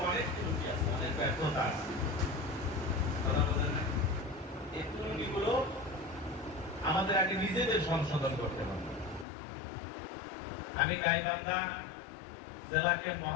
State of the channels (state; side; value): drops out; right; at 9.2 s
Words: অনেক ত্রুটি আছে, অনেক ব্যর্থতা আছে। কথা বলেন না, এই ত্রুটিগুলো আমাদের আগে নিজেদের সংশোধন করতে হবে। আমি গাইবান্ধা জেলাকে